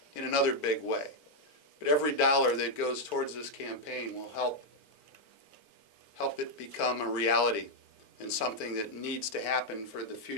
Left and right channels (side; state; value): right; late; 4.4 ms